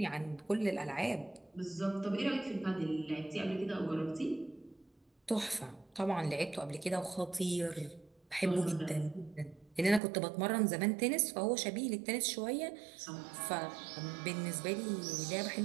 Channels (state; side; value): drops out; left; at 10.0 s